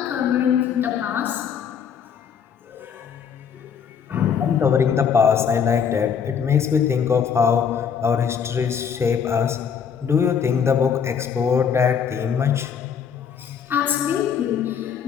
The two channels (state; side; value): quieter; right; 7.3 dB